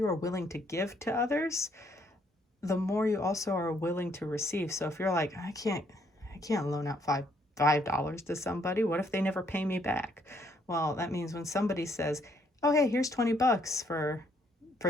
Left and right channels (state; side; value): normal; both; correlation 0.69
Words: are willing to give to others, the more you also are willing to receive. So if you're like, I can't loan out $5 to somebody, what if they never pay me back? Well, that means when somebody says, oh, hey, here's $20